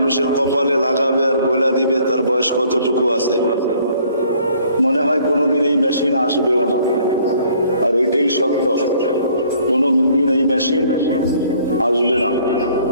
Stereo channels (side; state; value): both; inverted; correlation -0.59